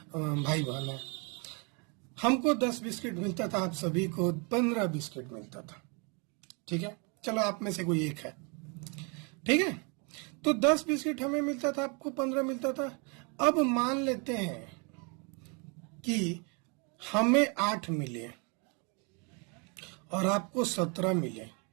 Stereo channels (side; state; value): left; quieter; 33.6 dB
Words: भाई बहन हैं, हमको 10 बिस्किट मिलता था, आप सभी को 15 बिस्किट मिलता था, ठीक है। चलो आप में से कोई एक है, ठीक है। तो 10 बिस्किट हमें मिलता था, आपको 15 मिलता था। अब मान लेते हैं कि हमें 8 मिले और आपको 17 मिले,